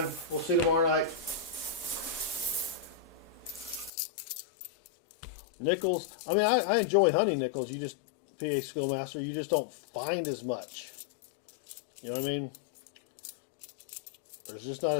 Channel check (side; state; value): right; drops out; at 3.9 s